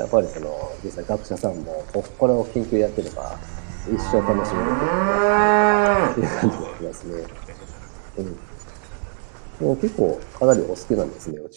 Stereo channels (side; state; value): left; silent; 58 dB below the other